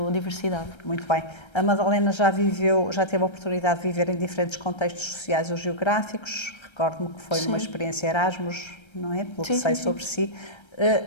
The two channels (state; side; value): late; right; 1.3 ms